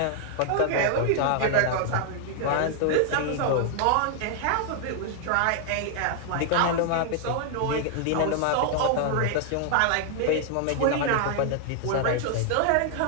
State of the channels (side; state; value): both; different; correlation 0.00